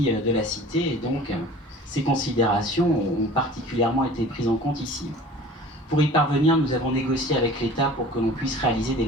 de la cité, et donc ces considérations ont particulièrement été prises en compte ici. Pour y parvenir, nous avons négocié avec l'État pour que l'on puisse réaliser des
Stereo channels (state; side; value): normal; both; correlation 0.44